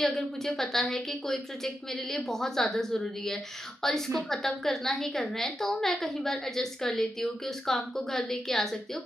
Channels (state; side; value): normal; both; correlation 0.87